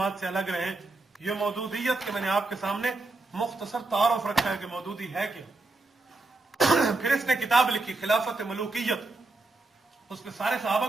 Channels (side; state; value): left; quieter; 3.2 dB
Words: से अलग रहे। ये मौदूदियत के मैंने आपके सामने मुख्तसर तारुफ रखा है कि मौदूदी है क्या। फिर इसने किताब लिखी खिलाफत मलूकियत, उसमें सारे सहाबा